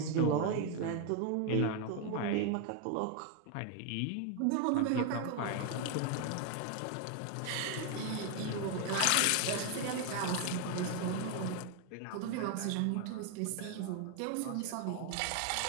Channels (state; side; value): different; both; correlation 0.01